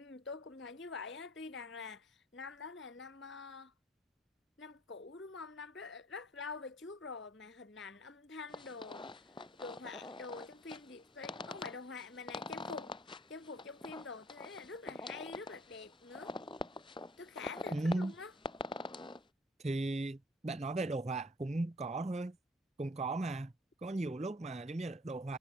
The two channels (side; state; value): both; normal; correlation 0.60